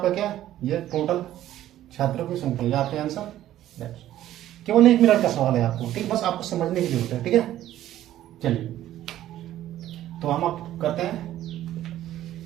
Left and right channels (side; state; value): left; quieter; 13.1 dB